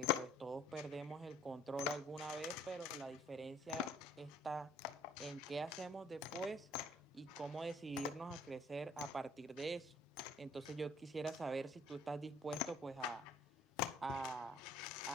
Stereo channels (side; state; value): both; normal; correlation 0.58